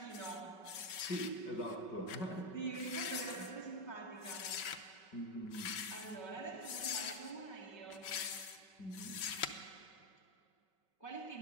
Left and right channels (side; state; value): right; late; 5.3 ms